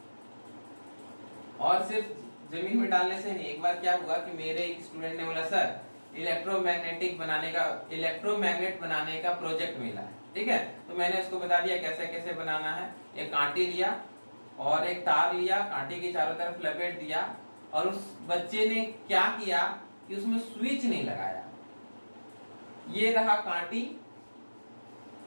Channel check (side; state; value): both; inverted; correlation -1.00